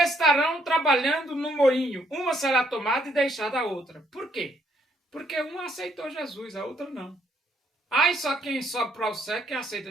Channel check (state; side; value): normal; both; correlation 0.70